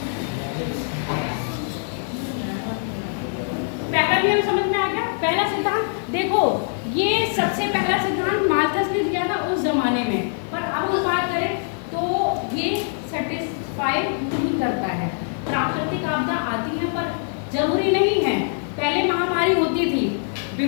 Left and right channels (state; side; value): silent; right; digital silence